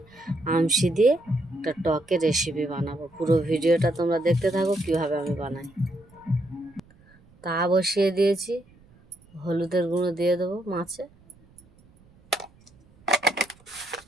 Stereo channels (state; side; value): noise; right; rumble, 29 dB below the sound